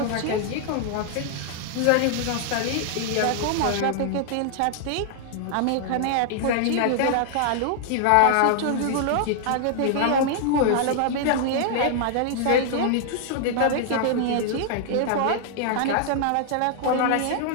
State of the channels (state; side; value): different; both; correlation -0.01